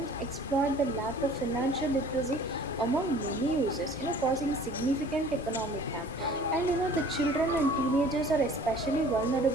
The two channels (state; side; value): normal; both; correlation 0.49